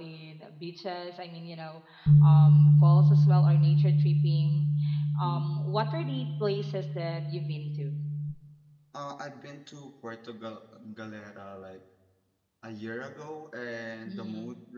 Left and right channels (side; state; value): both; identical; correlation 1.00